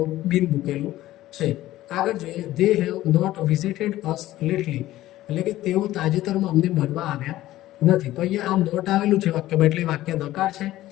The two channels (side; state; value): right; quieter; 15.3 dB